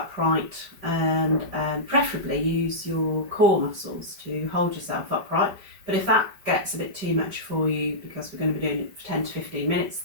and preferably use your core muscles to hold yourself upright. But if that gets a bit too much for you, because we're going to be doing it for 10 to 15 minutes,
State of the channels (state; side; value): late; left; 5.1 ms